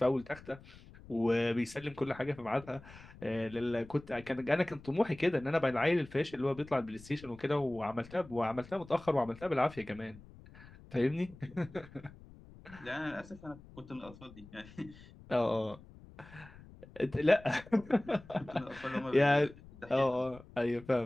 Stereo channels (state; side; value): noise; left; rumble, 20 dB below the sound